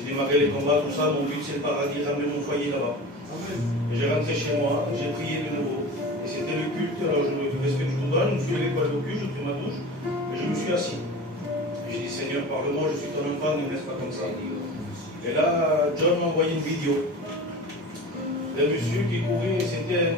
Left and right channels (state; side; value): normal; both; correlation 0.34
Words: démarré les combats, tout ça, mon but, c'est le paradis, ramener mon foyer là-bas. Et j'ai rentré chez moi, j'ai prié de nouveau. Et c'était le culte, alors je me respecte tout le monde, je me suis levé pour aller au culte, j'ai pris ma douche, et je me suis assis. Et j'ai dit, Seigneur, parle-moi, je suis ton enfant, ne me laisse pas comme ça. Et là, John m'a envoyé une vidéo d'un monsieur qui courait, c'était